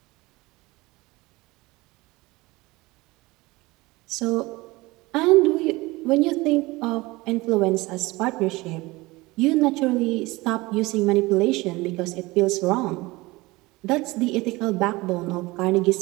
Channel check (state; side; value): quieter; left; 21.7 dB